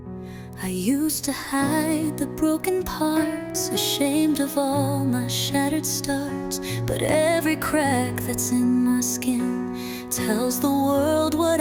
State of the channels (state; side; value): identical; both; correlation 1.00